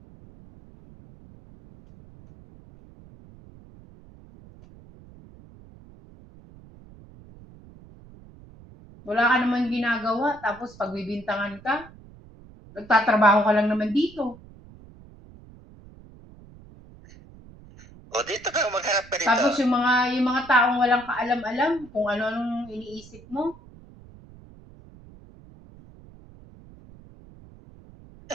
Wala ka naman ginagawa, tapos pagbibintangan ka, nagtatrabaho ka lang naman dito. O dito ka, magharap ka dito. Tapos yung mga taong walang kaalam-alam kung ano-anong iniisip mo.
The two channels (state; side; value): noise; right; rumble, 22 dB below the sound